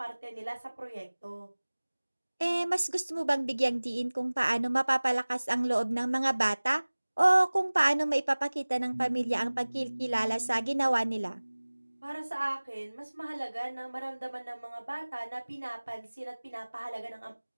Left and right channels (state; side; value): inverted; both; correlation -1.00